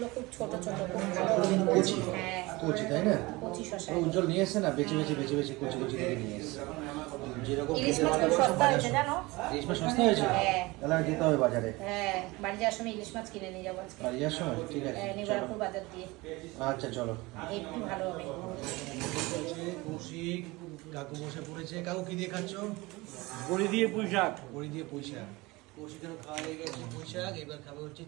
খুব ছোট ছোট, খুব ভালো। কচি হ্যাঁ, কচি তাই না? কচি শশা। উজ্জ্বল নিয়ে এসছে না, বেছে বেছে বেছে বেছে কচি কচি করে নিয়ে এসছে। যেরকম ইলিশ খেতে মাছ খুব ভালোবাসো সস্তা হয়েছে জানো? ইলিশ মাছ সস্তা হয়েছে? হ্যাঁ। তাহলে আর যেতে হবে বাজারে। হ্যাঁ, বাড়ি যাওয়ার সময় ইলিশ মাছ কিনে নিয়ে যাবো আজকে। বাড়ি যাওয়ার সময়? ঠিক আছে, নিবারপুর বাজার দিয়ে। আচ্ছা চলো। একটু ভালো হবে। কৌশিক কাকু বসে পড়েছে। কাকু কি দিয়ে খাচ্ছ? বড়ি দিয়ে পুঁই শাক। বড়ি দিয়ে পুঁই শাক। কৌশিকেরও খাওয়া হয়ে গেছে পুঁই শাক। এবার খাবে হচ্ছে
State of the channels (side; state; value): left; quieter; 22.5 dB